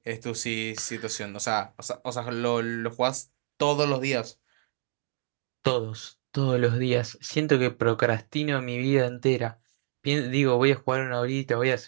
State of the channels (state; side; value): silent; left; digital silence